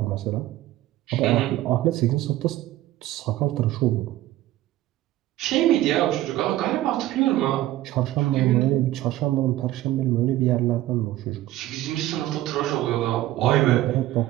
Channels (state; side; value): quieter; left; 15.1 dB